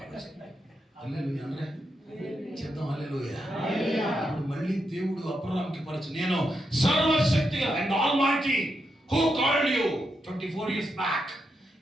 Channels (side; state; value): both; normal; correlation 0.84